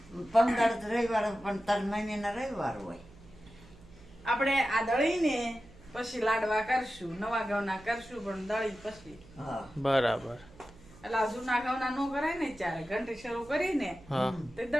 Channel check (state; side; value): noise; right; hum, 23 dB below the sound